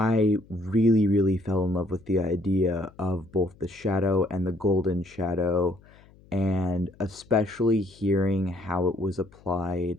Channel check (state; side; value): noise; left; hum, 26 dB below the sound